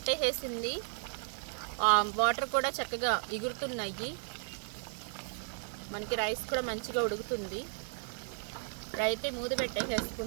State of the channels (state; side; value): silent; left; 55 dB below the other